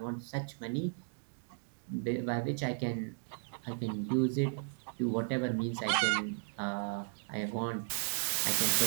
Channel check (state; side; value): silent; left; digital silence